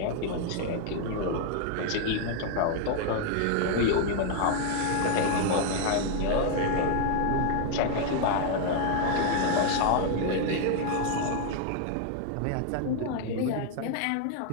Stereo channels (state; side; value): different; both; correlation 0.00